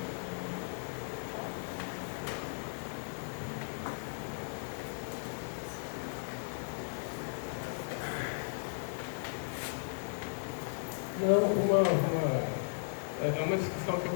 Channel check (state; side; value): silent; right; digital silence